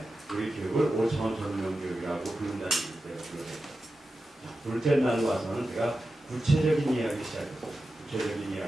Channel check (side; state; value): both; normal; correlation 0.92